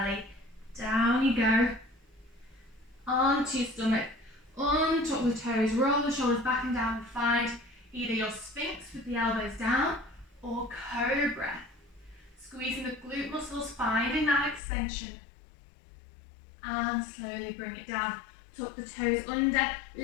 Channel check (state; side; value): drops out; right; at 14.6 s